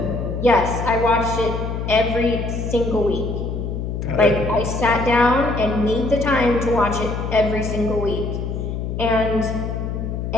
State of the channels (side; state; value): left; noise; hum, 4 dB below the sound